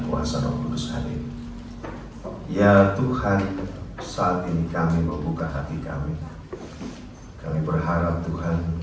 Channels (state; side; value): identical; both; correlation 1.00